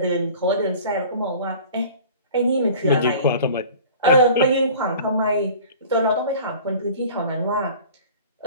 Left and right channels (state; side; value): inverted; both; correlation -0.44